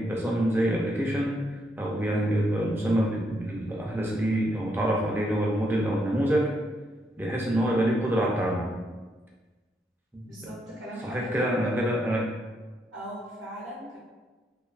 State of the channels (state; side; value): normal; both; correlation 0.78